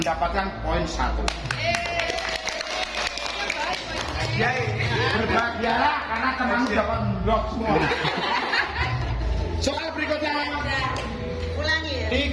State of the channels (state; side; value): identical; both; correlation 1.00